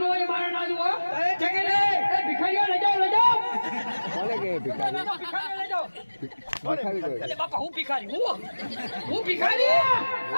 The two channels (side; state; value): both; inverted; correlation -1.00